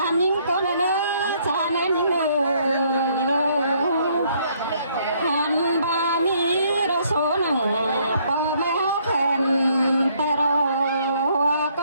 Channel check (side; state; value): both; inverted; correlation -0.67